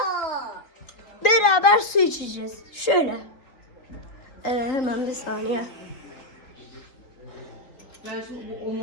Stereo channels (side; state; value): right; late; 3.7 ms